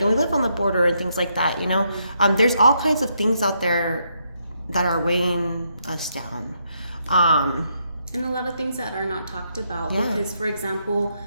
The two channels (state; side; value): inverted; both; correlation -0.77